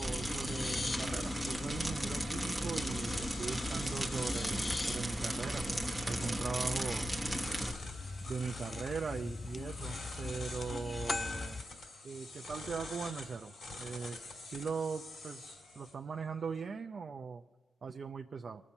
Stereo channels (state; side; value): normal; both; correlation 0.89